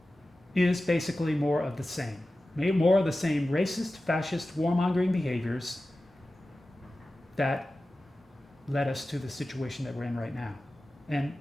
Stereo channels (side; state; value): both; normal; correlation 0.95